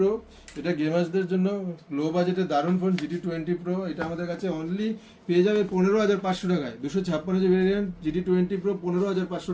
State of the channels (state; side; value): identical; both; correlation 1.00